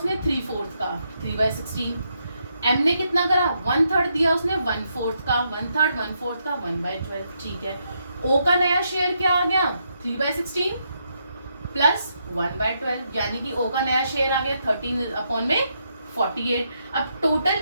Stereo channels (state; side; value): inverted; both; correlation -0.79